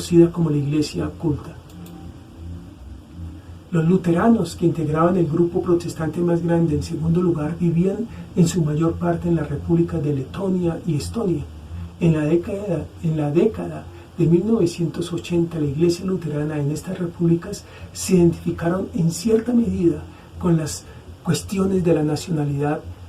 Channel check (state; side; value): identical; both; correlation 1.00